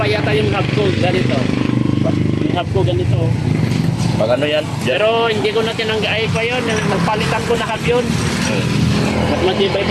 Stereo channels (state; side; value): identical; both; correlation 1.00